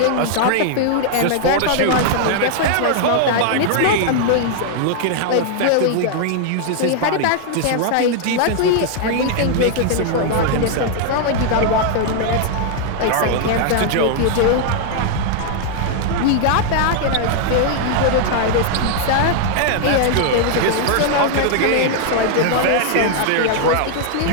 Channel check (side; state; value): both; different; correlation 0.00